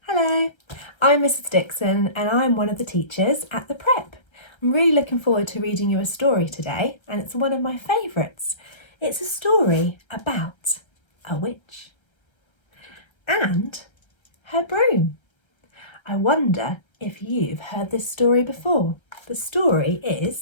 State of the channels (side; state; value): right; late; 1.3 ms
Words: Hello, I'm Mrs Dixon and I'm one of the teachers at the prep. I'm really looking forward to reading you a story today, and it's one of my favourites. It's a story about a witch and her broom. I wonder if you've heard this story before. The story